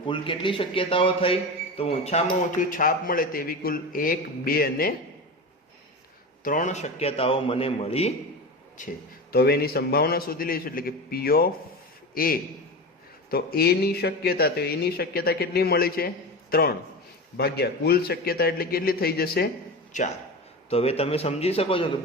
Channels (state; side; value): normal; both; correlation 0.26